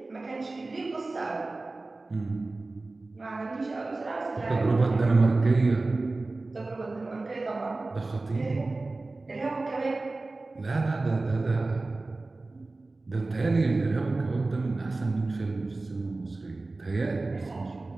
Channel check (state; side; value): quieter; left; 3.3 dB